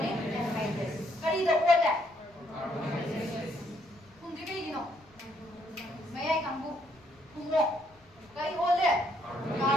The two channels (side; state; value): left; noise; rumble, 30 dB below the sound